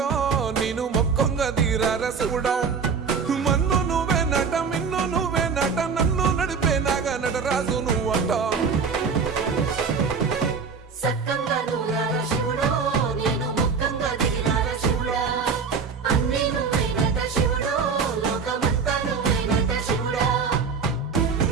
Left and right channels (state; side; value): quieter; left; 5.5 dB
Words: నేను మొక్కంగా తీరార శివుడో మన్ను నువ్వే నట మిన్ను నువ్వే నట నన్ను నడిపే నాగా నటరాజు నువ్వట